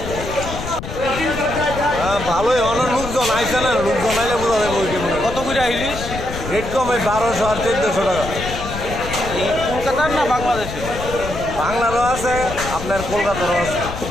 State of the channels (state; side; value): noise; left; rumble, 8 dB below the sound